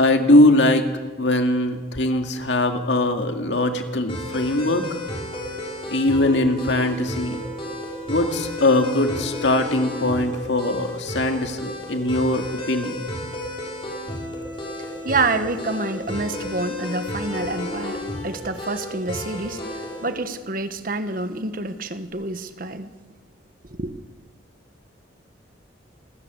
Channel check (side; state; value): both; normal; correlation 0.29